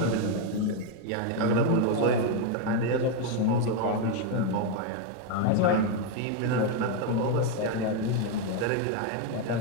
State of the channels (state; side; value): different; both; correlation 0.01